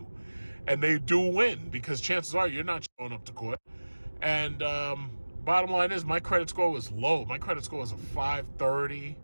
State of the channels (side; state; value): both; inverted; correlation -1.00